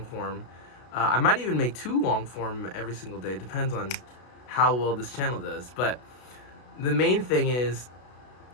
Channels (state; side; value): late; right; 32 ms